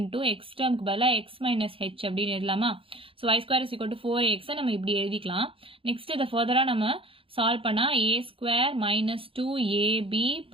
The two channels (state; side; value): late; left; 0.26 ms